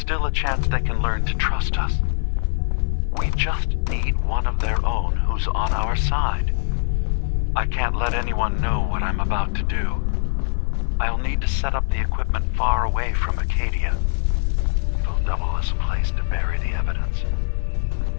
a chance they can learn to trust us. We just need one of their own who's on our side. I can't let anyone know what I'm about to do. I'll need to set up the equipment far away from Acadia. It'll double as a place to bury the evidence.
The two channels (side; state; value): right; silent; 56 dB below the other